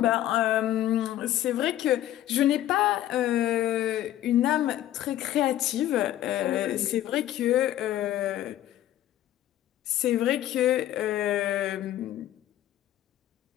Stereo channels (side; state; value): right; quieter; 13.0 dB